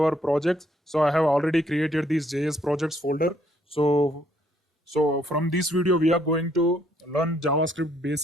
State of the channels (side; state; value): both; normal; correlation 0.68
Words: projects. So I have already created this JS projects folder. So from this video, we are going to learn JavaScript